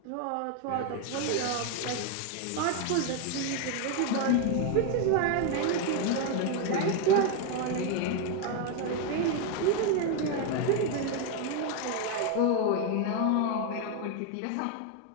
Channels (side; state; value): both; different; correlation 0.01